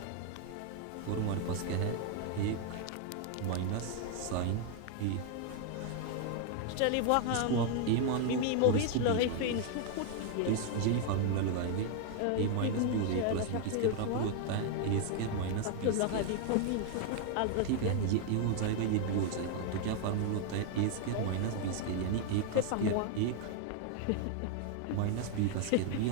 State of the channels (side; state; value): both; different; correlation 0.00